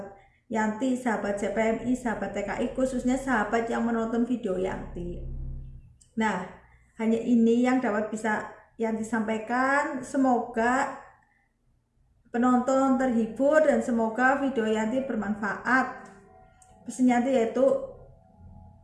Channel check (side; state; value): both; identical; correlation 1.00